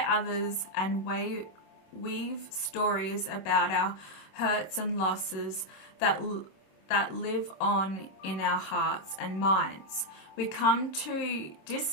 others and weave stories about our hurts and losses that live on in our hearts and minds. We come to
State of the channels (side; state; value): right; late; 26 ms